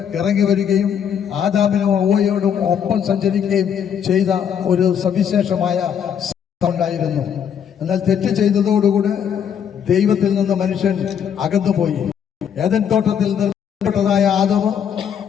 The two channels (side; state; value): right; quieter; 8.3 dB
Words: ഇറങ്ങി വരികയും ആദാമിനും ഹവ്വയോടും ഒപ്പം സഞ്ചരിക്കുകയും ചെയ്ത ഒരു സവിശേഷമായ ഉണ്ടായിരുന്നു. എന്നാൽ തെറ്റ് ചെയ്തതോടുകൂടി ദൈവത്തിൽ നിന്ന് മനുഷ്യൻ അകന്നുപോയി. ഏദൻ തോട്ടത്തിൽ നിർമ്മിക്കപ്പെട്ടതായ ആദാമ്